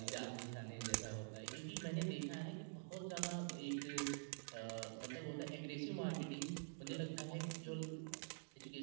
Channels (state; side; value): silent; left; digital silence